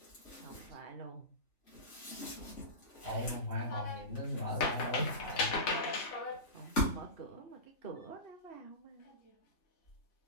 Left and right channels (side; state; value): right; late; 3.5 ms